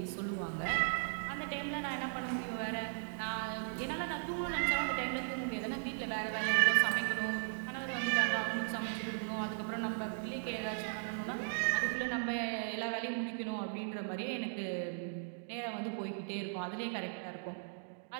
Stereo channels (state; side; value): silent; left; digital silence